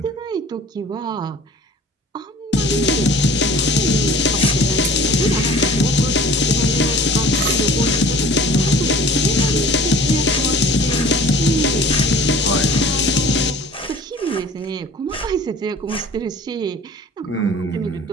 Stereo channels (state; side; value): normal; both; correlation 0.46